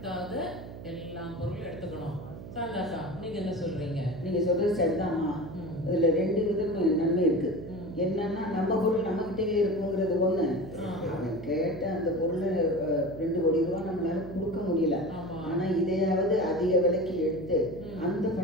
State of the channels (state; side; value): noise; right; hum, 13 dB below the sound